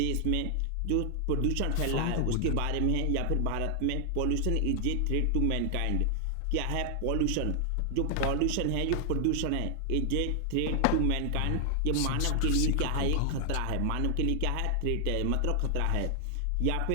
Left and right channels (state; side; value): different; both; correlation 0.00